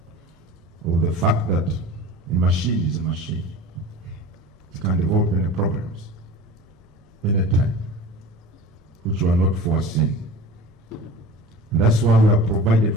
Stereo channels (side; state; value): both; normal; correlation 0.37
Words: of the fact that a machine is a machine. It can develop any problems anytime, which were not foreseen. And that's why we have provided